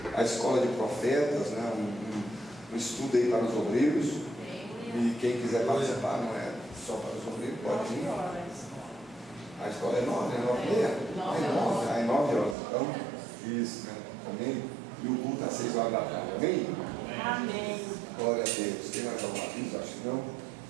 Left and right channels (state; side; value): drops out; left; at 12.6 s